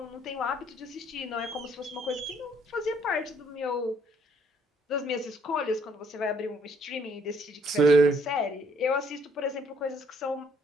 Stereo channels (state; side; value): normal; both; correlation 0.65